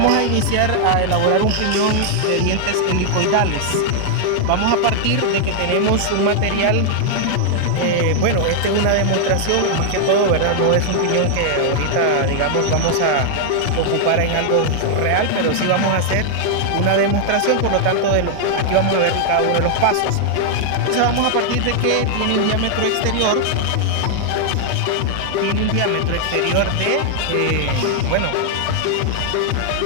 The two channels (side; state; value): both; different; correlation 0.00